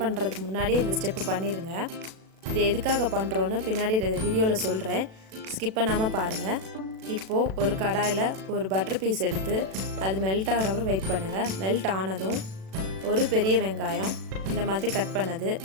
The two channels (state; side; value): late; left; 37 ms